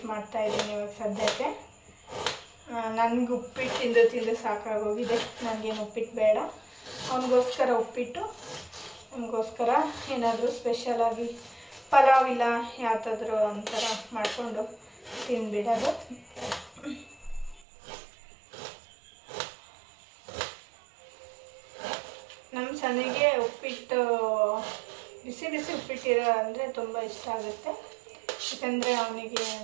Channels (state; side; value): drops out; left; at 17.7 s